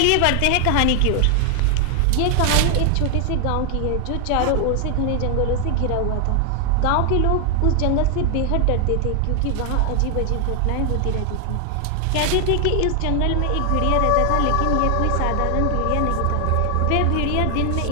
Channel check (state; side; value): different; both; correlation 0.00